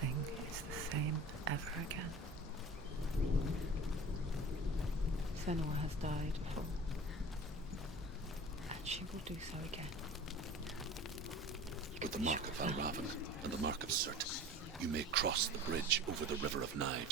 is the same ever again. Senua has died before, and she will do so again. With the mark of Valravyn and the mark of Surtr, you may cross the bridge over the River of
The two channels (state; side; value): normal; both; correlation 0.39